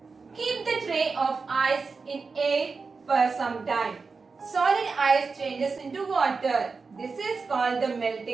Keep the tray of ice in air for some time. Solid ice changes into water. This is called the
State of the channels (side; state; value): left; quieter; 4.6 dB